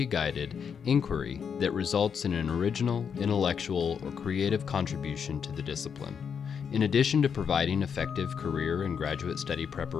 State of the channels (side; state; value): right; quieter; 7.0 dB